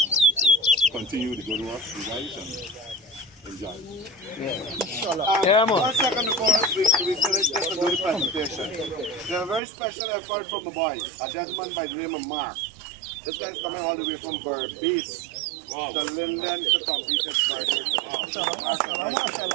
So continue the good work, you guys, and enjoy. Yeah, man. 1 second before we finish this and do the presentation. There's a very special effort from the boys, a gentleman by the name of Mark. This guy's coming all the way from Berbice to Linden to complete his birthday. Mark,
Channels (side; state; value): left; drops out; at 9.6 s